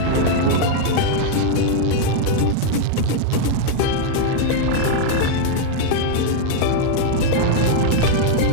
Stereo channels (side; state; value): both; different; correlation -0.01